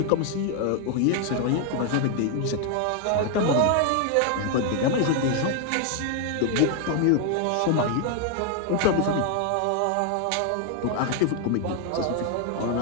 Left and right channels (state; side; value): different; both; correlation 0.00